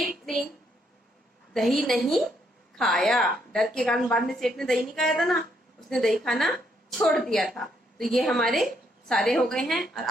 ने दही नहीं खाया, डर के कारण बाद में सेठ ने दही नहीं खाया था ना, उसने दही खाना छोड़ दिया था। तो ये हमारे सारे हो गए हैं और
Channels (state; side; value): normal; both; correlation 0.73